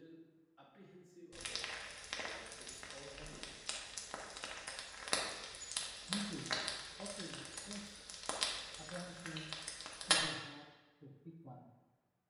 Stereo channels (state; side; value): identical; both; correlation 1.00